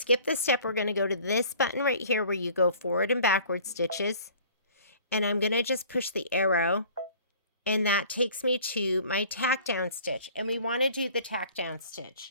the step, we're going to go to this button right here where you go forward and backward stitches. And I'm going to just push the arrow. And that takes me to my tack down stitch. And we want to do the tack down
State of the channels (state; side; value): inverted; both; correlation -0.49